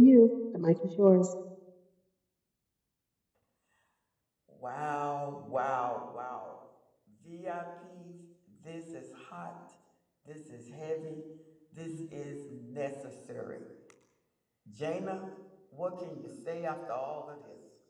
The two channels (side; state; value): both; identical; correlation 1.00